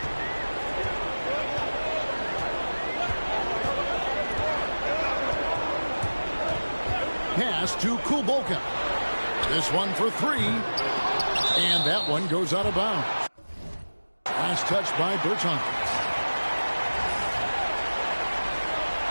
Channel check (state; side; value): inverted; both; correlation -1.00